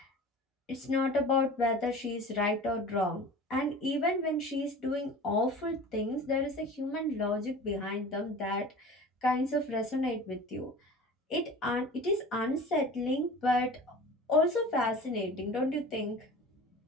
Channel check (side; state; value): both; normal; correlation 0.39